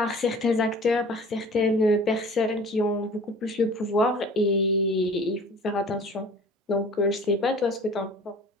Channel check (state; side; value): normal; both; correlation 0.44